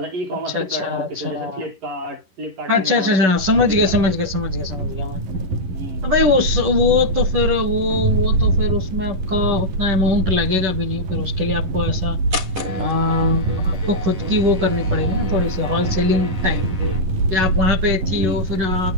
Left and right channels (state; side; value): late; left; 11 ms